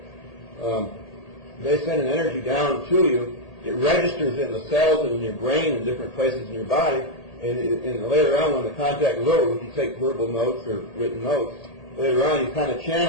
they send an energy down to you, it registers in the cells and in your brain and different places in your body, and later on when the contact is over, if you take verbal notes or written notes, later on you kind of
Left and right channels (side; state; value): right; late; 1.8 ms